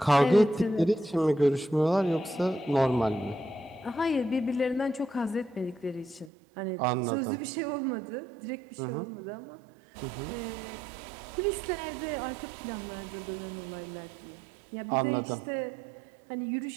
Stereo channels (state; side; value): drops out; left; at 6.3 s